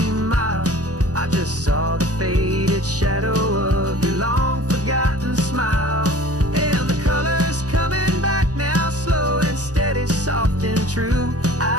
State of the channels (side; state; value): left; late; 0.67 ms